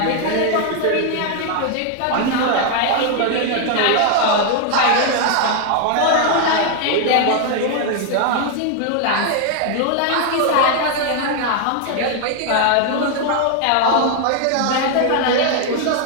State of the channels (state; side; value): different; both; correlation 0.00